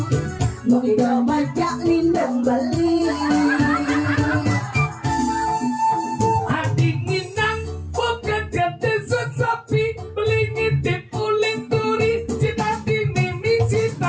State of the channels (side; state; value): both; identical; correlation 1.00